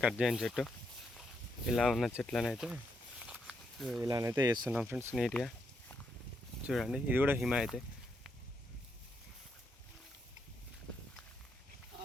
కట్ చేయని చెట్టు. ఇలా ఉన్న చెట్లనైతే ఇలానైతే వేస్తున్నాం ఫ్రెండ్స్ నీట్గా. చూడండి ఇది కూడా హిమాయతే.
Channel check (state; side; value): normal; both; correlation 0.79